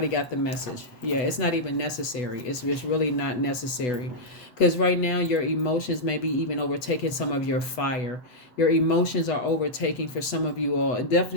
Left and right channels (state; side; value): late; right; 8.1 ms